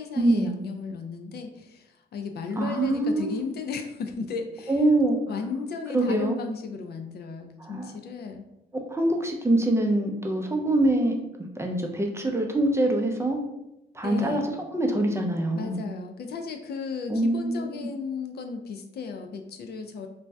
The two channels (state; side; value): normal; both; correlation 0.71